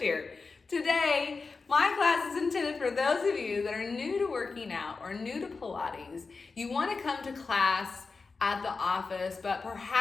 here. Today, my class is intended for those of you that are new to working out or new to Pilates. You want to come to class at the office, but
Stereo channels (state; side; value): quieter; right; 4.3 dB